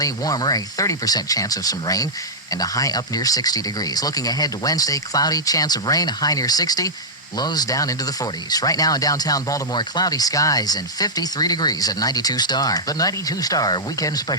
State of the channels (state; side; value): normal; both; correlation -0.10